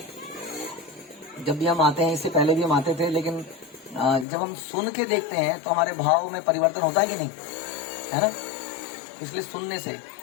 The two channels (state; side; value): drops out; right; at 4.2 s